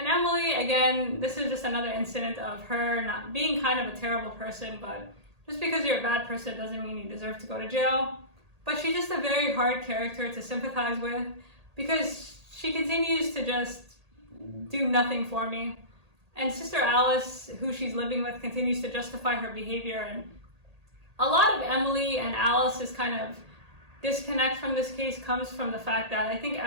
Emily, again, this is just another incident of her not being kind of a terrible person, but just because you're a bad person doesn't mean you deserve to go to jail. But she's just a very hard character to sympathize with, because she continues to just do nothing for me. And Sister Alice, who she's living with, continues to justify her behavior. And a lot of Emily and Alice's kind of disconnect from this case comes from the fact that I think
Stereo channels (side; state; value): left; late; 1.8 ms